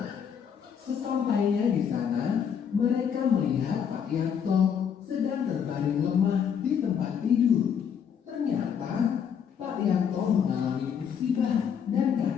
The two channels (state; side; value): quieter; right; 7.7 dB